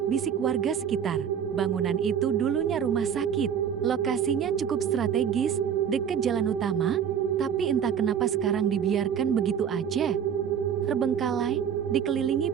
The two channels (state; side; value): quieter; left; 8.2 dB